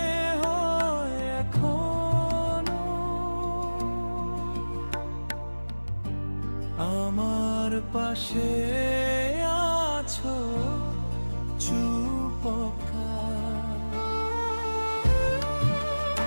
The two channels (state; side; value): inverted; both; correlation -1.00